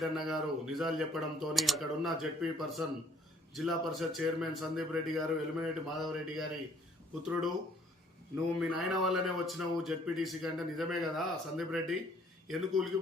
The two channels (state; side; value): normal; both; correlation 0.61